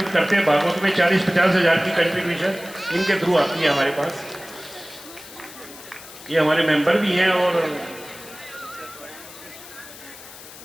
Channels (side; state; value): left; noise; hiss, 17 dB below the sound